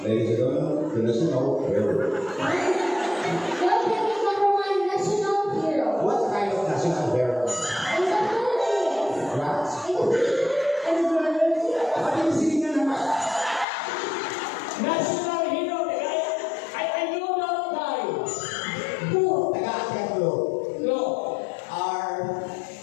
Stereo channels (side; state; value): right; drops out; at 13.7 s